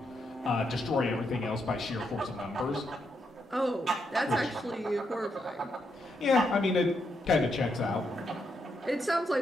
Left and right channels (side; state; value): both; normal; correlation 0.80